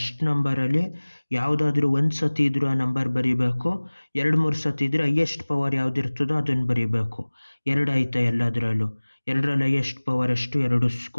ನಂಬರಲ್ಲಿ ಯಾವುದಾದ್ರೂ ಒಂದು ಸತಿ ಇದ್ರೂ ಆ ನಂಬರ್ ಬರೀಬೇಕು. 2-3 ಸತಿ ಇದ್ರೆ ಹೈಯೆಸ್ಟ್ ಪವರ್ ಯಾವುದಿರ್ತದೋ ಅದನ್ನು ಬರೀಬೇಕು. 2 ಐತೆ ಎಲ್ಲದರಲ್ಲೂ. 2ರಲ್ಲಿ ಹೈಯೆಸ್ಟ್ ಪವರ್ ಎಷ್ಟು, 2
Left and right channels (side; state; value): both; inverted; correlation -1.00